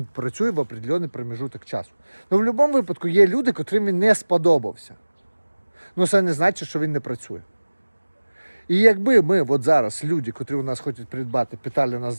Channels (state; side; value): inverted; both; correlation -1.00